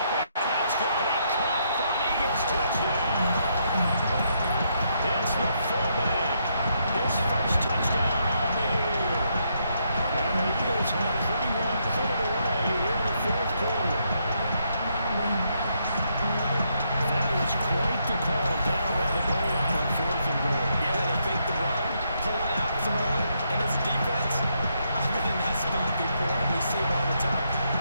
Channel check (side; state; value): both; inverted; correlation -0.76